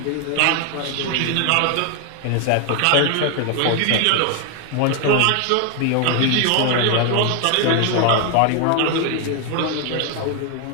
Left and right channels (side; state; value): both; different; correlation 0.00